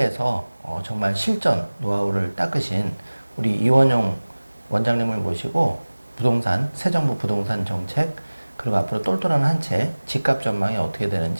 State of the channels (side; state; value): both; inverted; correlation -1.00